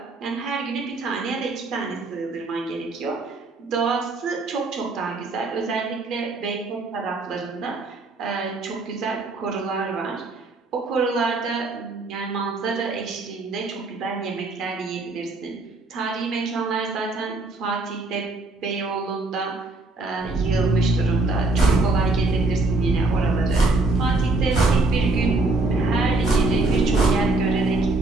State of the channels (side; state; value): left; quieter; 3.2 dB